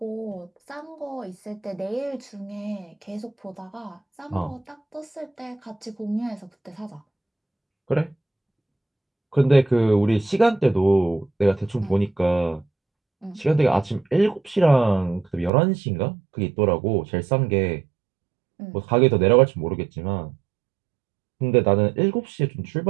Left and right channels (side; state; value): left; drops out; at 15.5 s